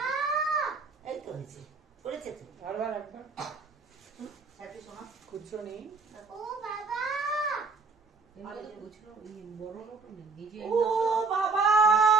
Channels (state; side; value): quieter; left; 4.2 dB